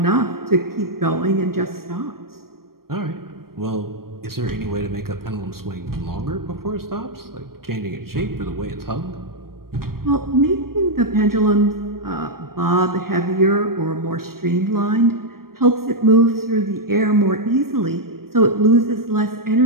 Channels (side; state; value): left; late; 0.93 ms